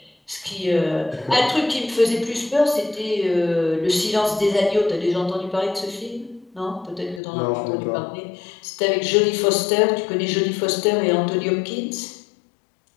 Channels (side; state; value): right; drops out; at 7.2 s